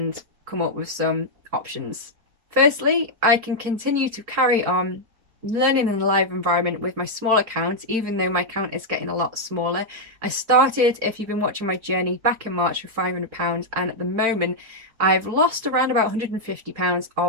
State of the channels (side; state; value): left; late; 4.4 ms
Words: come up with some options. Firstly, I can continue to carry on learning in a live environment with my small account, even though my account is getting a lot smaller. I started, if you've been watching my journey, back in March with £500, and at the moment I've lost around about £150